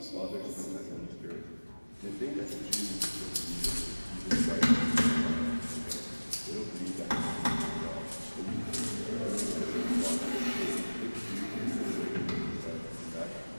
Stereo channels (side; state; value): both; inverted; correlation -1.00